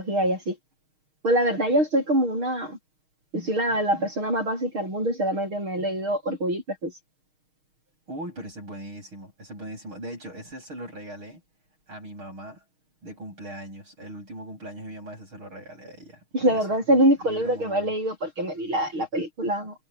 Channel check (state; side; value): late; left; 6.4 ms